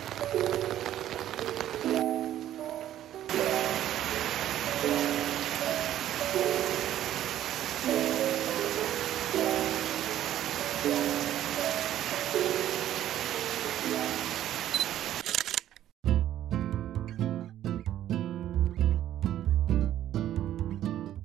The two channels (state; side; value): quieter; left; 12.1 dB